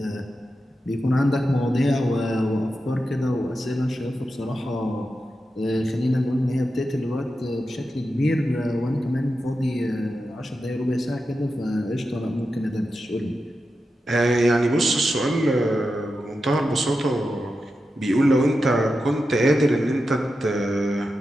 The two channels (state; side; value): normal; both; correlation 0.90